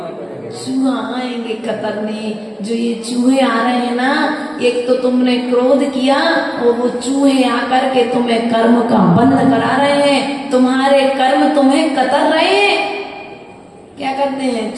चूहा आएंगे कतरने। जो ये चूहे आ रहे हैं ना, एक तो तुमने क्रोध किया और वो चूहे आकर के तुम्हें कर्म का बंध करा रहे हैं। तुम्हारे कर्म तुम्हें कतर रहे हैं। क्या करते हैं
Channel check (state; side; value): identical; both; correlation 1.00